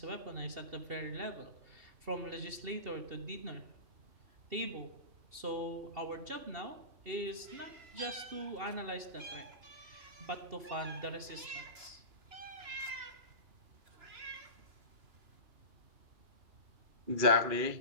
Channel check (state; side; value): late; left; 2.7 ms